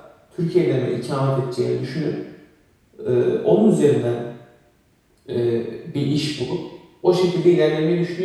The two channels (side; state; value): both; identical; correlation 1.00